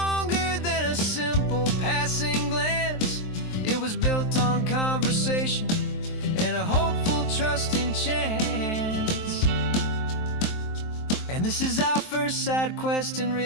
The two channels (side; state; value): right; late; 23 ms